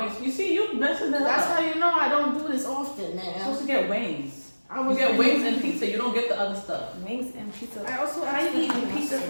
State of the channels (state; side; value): inverted; both; correlation -1.00